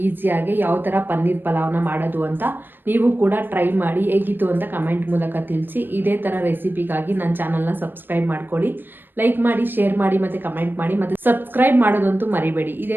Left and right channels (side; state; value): left; late; 0.095 ms